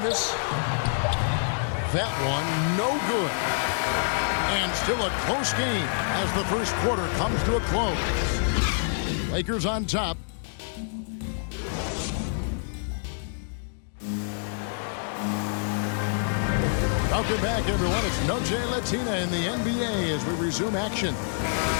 That one no good. And still a close game as the first quarter comes to a close. Lakers on top. Welcome back, everyone. It's Noche Latina in the NBA as we resume action.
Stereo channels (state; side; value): silent; right; digital silence